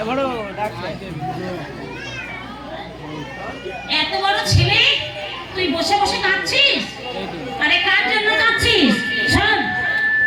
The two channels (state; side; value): identical; both; correlation 1.00